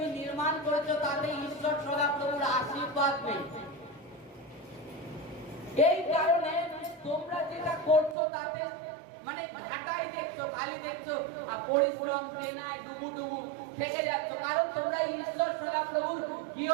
নির্মাণ করেছো তাতে ঈশ্বর সদাপ্রভুর আশীর্বাদ নেই। এই কারণে তোমরা যেটা করছো তাতে মানে ঘাটাই দেখছো, খালি দেখছো, আর পরিশ্রম প্রেরণায় ডুবু থেকে যাচ্ছ। কারণ তোমরা ঈশ্বর সদাপ্রভুর গৃহ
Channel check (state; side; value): drops out; left; at 8.2 s